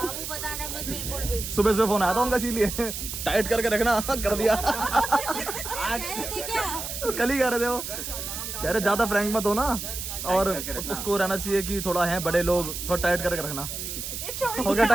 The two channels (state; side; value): noise; right; hiss, 6 dB below the sound